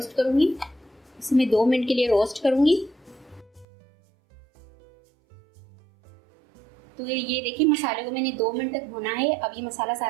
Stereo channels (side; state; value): left; drops out; at 3.7 s